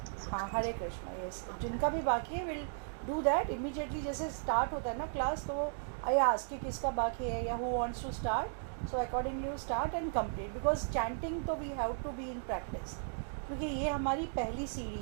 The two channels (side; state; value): left; silent; digital silence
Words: हाँ Hare Krishna, yes. जिनका भी बाकी है विल डू दैट इमीडिएटली। जैसे स्टार्ट होता है ना क्लास, तो आई आस्क कि किसका बाकी है या who wants to start, so accordingly you start and complete, because chanting तो we have to be in practice, क्योंकि ये हमारी पहली